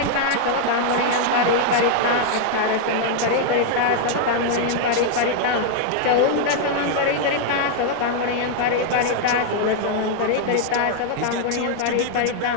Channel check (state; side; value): different; both; correlation 0.00